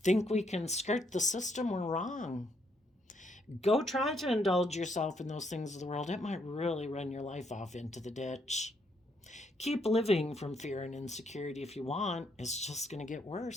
think we can skirt the system, we're wrong. Go try to indulge yourself in those things of the world. It might really run your life off into the ditch. Keep living from fear and insecurity if you want. It's just going to get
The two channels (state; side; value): normal; both; correlation 0.74